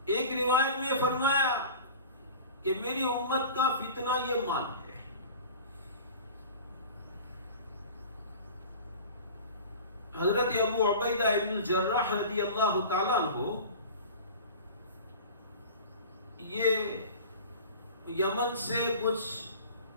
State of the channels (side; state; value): both; inverted; correlation -0.39